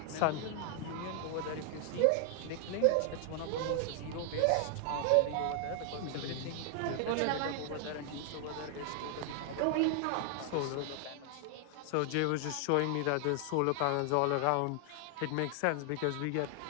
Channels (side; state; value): both; different; correlation 0.00